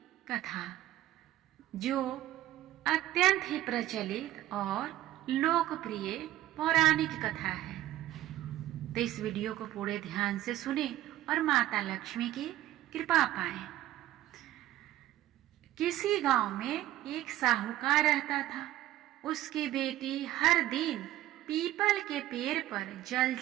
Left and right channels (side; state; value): left; quieter; 14.3 dB